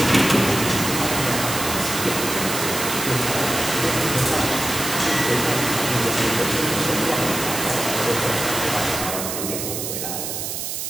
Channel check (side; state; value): right; noise; hiss, 4 dB below the sound